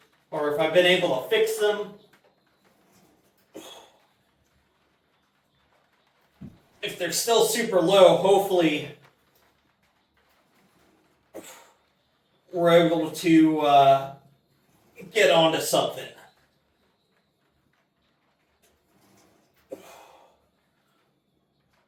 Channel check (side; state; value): both; identical; correlation 1.00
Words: or if I've been able to fix them. If they're still super low, hopefully we're able to get onto something.